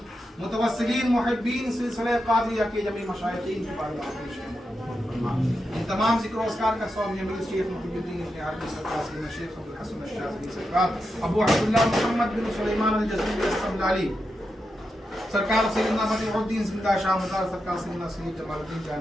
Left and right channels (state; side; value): normal; both; correlation 0.87